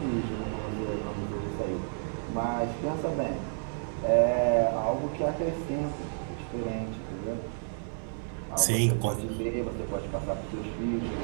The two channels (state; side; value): silent; left; digital silence